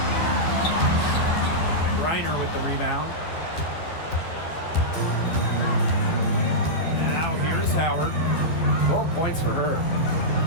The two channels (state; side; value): late; right; 12 ms